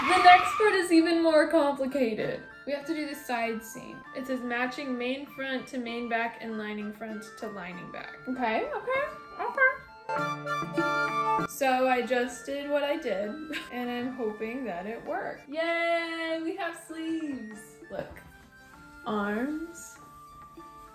next part is even more complicated. We have to do the side seam. It says matching main front to main back and lining front to lining back. Okay. So I just did what I did, and I'm hoping that it worked. Yay, we have sleeves. Look, arms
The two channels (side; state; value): both; identical; correlation 1.00